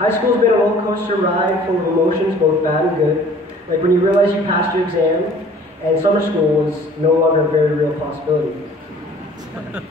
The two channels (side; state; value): both; normal; correlation 0.51